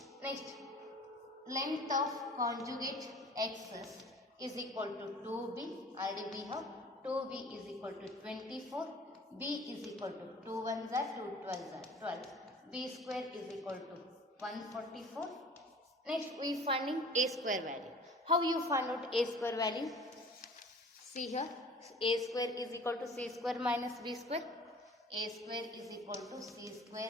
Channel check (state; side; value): normal; both; correlation 0.46